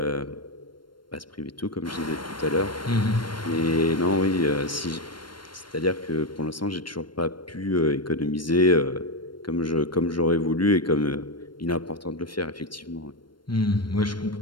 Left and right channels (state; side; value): late; right; 0.72 ms